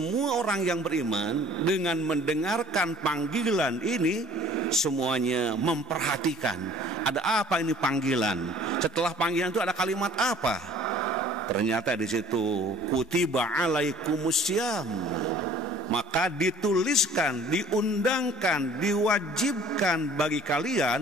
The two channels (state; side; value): normal; both; correlation 0.52